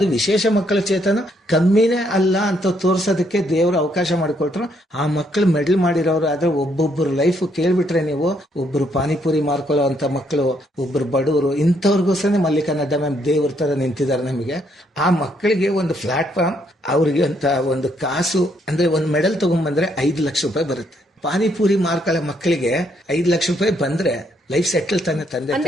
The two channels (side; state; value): both; normal; correlation 0.72